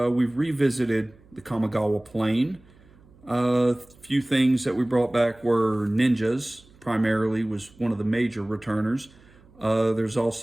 revisited the Kamigawa plane. A few things that we brought back were ninjas, primarily was one of the major returners. There's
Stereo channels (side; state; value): right; noise; hum, 27 dB below the sound